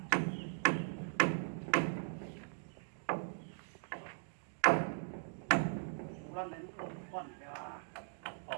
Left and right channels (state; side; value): silent; left; digital silence